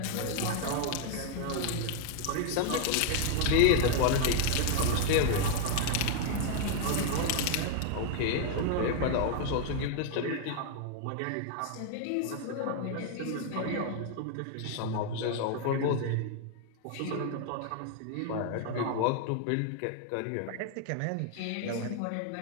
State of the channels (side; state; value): both; different; correlation 0.00